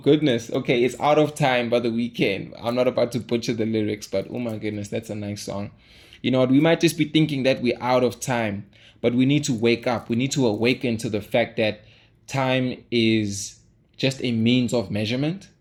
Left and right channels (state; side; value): identical; both; correlation 1.00